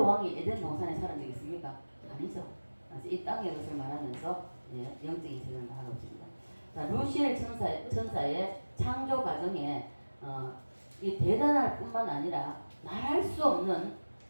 왕이 에덴 동산에 살은 적이 있습니까? 아니죠. 이 땅의 것을 말하면서 영적인 세계를 말하고 있습니다. 자, 루시엘 천사의 창조 과정에 이 대단할 뿐만 아니라 말할 수 없는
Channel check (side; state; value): both; inverted; correlation -1.00